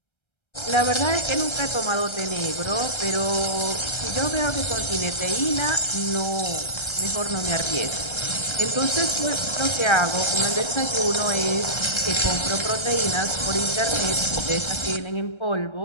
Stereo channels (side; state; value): right; late; 1.3 ms